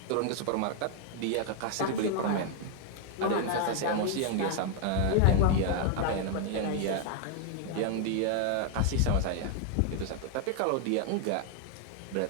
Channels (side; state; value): both; different; correlation 0.00